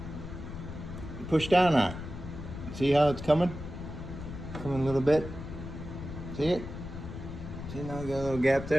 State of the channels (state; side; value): noise; left; rumble, 9 dB below the sound